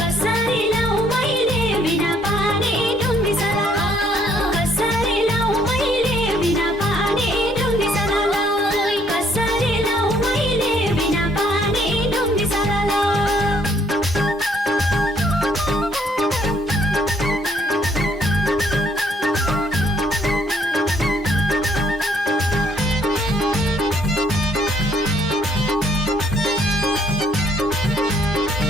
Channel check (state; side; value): normal; both; correlation 0.66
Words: लाउँ मैले बिना पानी ढुङ्गी सलाला कसरी लाउँ मैले बिना पानी ढुङ्गी सलाला कसरी लाउँ मैले बिना पानी ढुङ्गी सलाला